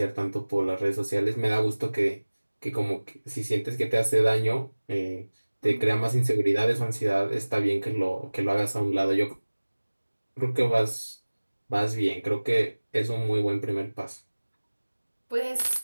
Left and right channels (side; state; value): both; inverted; correlation -1.00